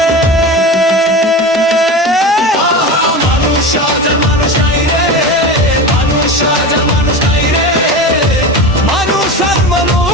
মানুষ আজ আর মানুষ নাই রে, মানুষ আজ আর মানুষ নাই রে, মানুষ আর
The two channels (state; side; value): normal; both; correlation 0.27